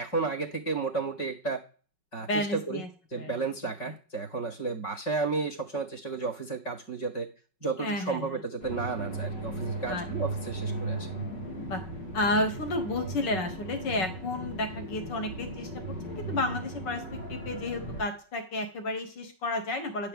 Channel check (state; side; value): late; right; 5.4 ms